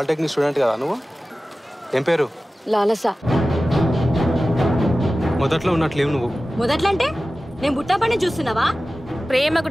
స్టూడెంట్ కదా నువ్వు? ఏం పేరు? లాలస. మొదట్లో ఉన్నట్లేవు నువ్వు. మొదట్లో అంటే నేను బుట్టపని చూస్తున్నావా? ప్రేమకు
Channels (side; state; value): both; normal; correlation 0.96